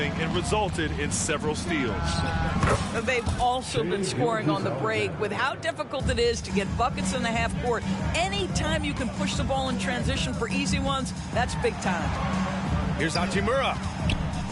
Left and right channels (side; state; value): both; identical; correlation 1.00